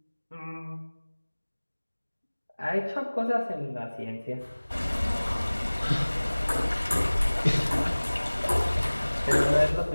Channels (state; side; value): inverted; both; correlation -1.00